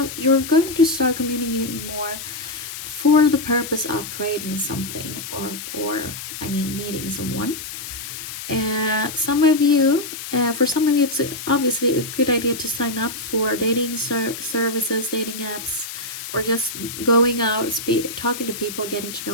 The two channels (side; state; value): left; noise; hiss, 9 dB below the sound